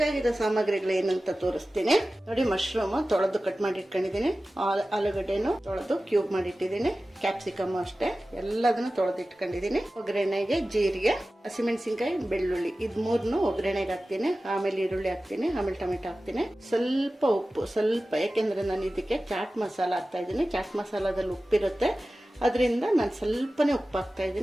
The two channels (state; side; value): normal; both; correlation 0.96